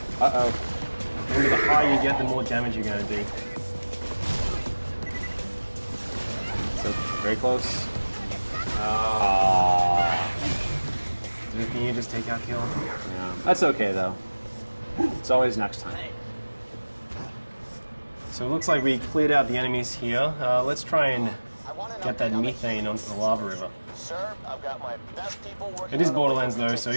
Uh-oh. Remember, the higher you get, the more damage you're going to do. So, very close. Can you just take out kill? Yeah. That's okay, though. It's always next time. So it looks like we cleared out the enemies here. Let's try and get that methane onto the lava river. Sir, I've got my best people working. It is Borderlands though, so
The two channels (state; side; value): inverted; both; correlation -1.00